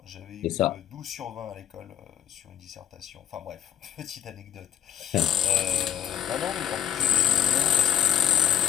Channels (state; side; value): quieter; right; 10.1 dB